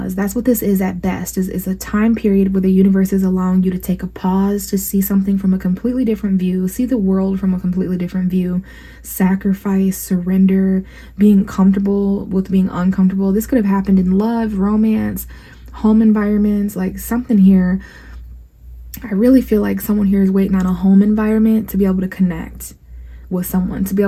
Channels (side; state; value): both; identical; correlation 1.00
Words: That's what this is at best. Is a time period where the universe is allowing you to take a pause to see something from a completely different view, see the world from a completely different view, sacrifice, surrender, being comfortable with being uncomfortable. This could have happened in love, romance, home environments, like something here. I really feel like someone here is waiting on a home environment to be able to connect with someone, to be